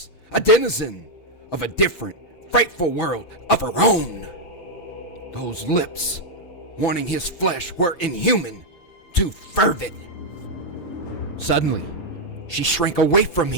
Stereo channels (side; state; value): right; late; 5.9 ms